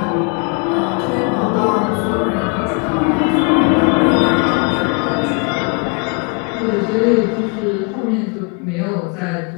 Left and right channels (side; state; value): right; quieter; 34.4 dB